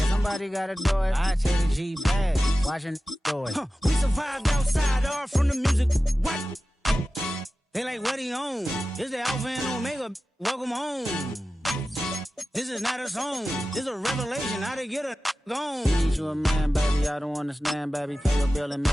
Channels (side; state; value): both; normal; correlation 0.95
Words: somebody gotta do it. I take the G bag. Watching do it. We survived outside, all from the music. What? They like, what he on? This the Alpha and Omega. Welcome home. This is not a song. This is a revelation. How to get a gone. Need you a man, baby. I don't understand, baby. Pay your bill and